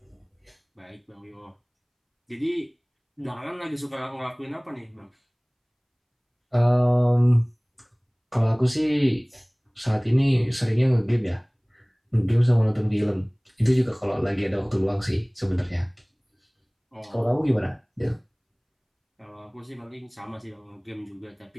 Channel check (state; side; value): identical; both; correlation 1.00